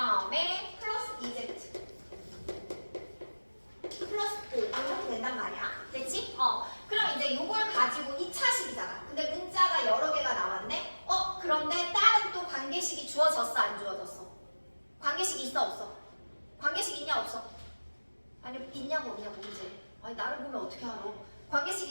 플러스 2z 플러스 5 이렇게 된단 말이야. 됐지? 그럼 이제 요걸 가지고 2차식이잖아. 근데 문자가 여러 개가 나왔네? 그런데 다른 또 관계식이 주어졌어 안 주어졌어? 관계식이 있어 없어? 관계식 있냐 없어? 아니 있냐고 없냐고 문제. 아니 나를 보면 어떻게 알아?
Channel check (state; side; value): inverted; both; correlation -1.00